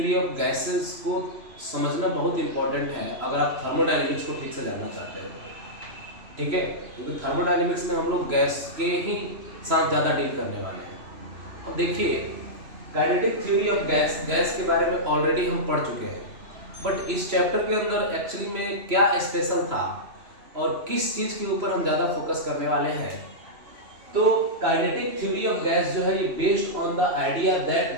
of gases को समझना बहुत इंपॉर्टेंट है अगर आप थर्मोडायनेमिक्स को ठीक से जानना चाहते हो। ठीक है, क्योंकि थर्मोडायनेमिक्स में हम लोग गैस के ही साथ ज़्यादा डील करने वाले हैं। अब देखिए, काइनेटिक थ्योरी ऑफ गैस के बारे में ऑलरेडी हम पढ़ चुके हैं, बट इस चैप्टर के अंदर एक्चुअली में क्या स्पेशल था और किस चीज़ के ऊपर हम ज़्यादा फोकस करने वाले हैं। तो काइनेटिक थ्योरी ऑफ गैस जो है ये based on the idea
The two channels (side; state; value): left; late; 3.0 ms